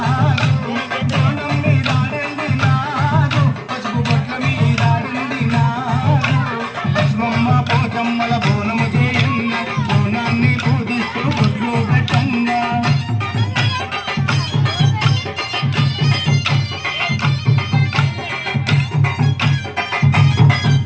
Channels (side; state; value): both; identical; correlation 1.00